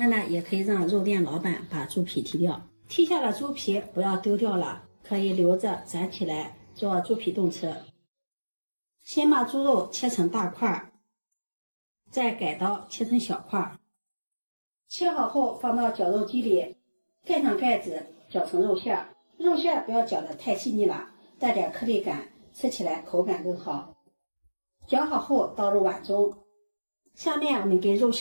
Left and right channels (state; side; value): inverted; both; correlation -1.00